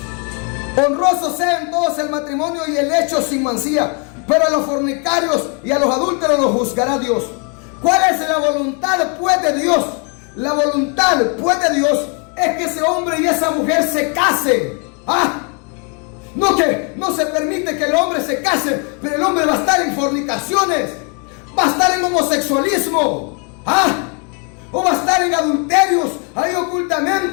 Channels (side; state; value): right; quieter; 37.1 dB